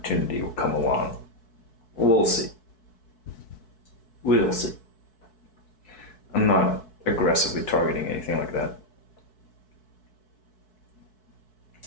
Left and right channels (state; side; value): late; right; 4.6 ms